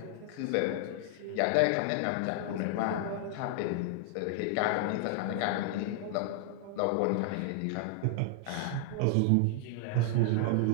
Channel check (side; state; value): both; different; correlation 0.00